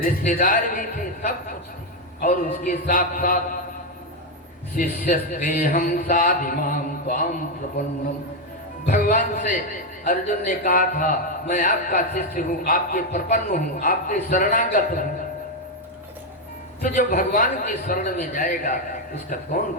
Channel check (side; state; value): both; normal; correlation 0.05